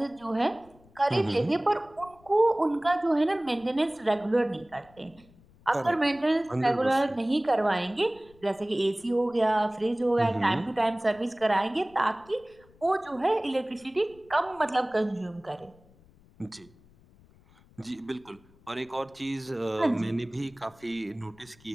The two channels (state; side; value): noise; left; rumble, 28 dB below the sound